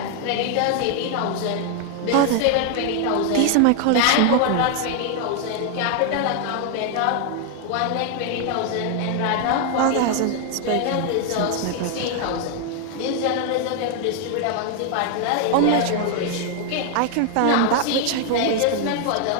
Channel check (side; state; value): both; different; correlation 0.00